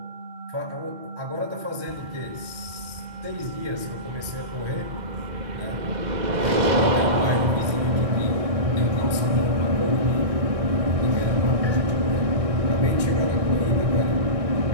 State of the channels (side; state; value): left; late; 2.0 ms